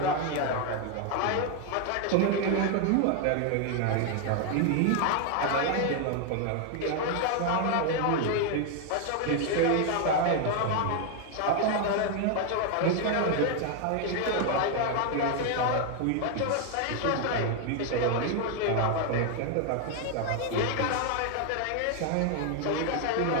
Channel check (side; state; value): both; different; correlation 0.00